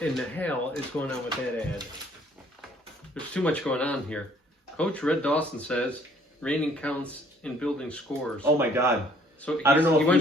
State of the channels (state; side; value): normal; both; correlation 0.60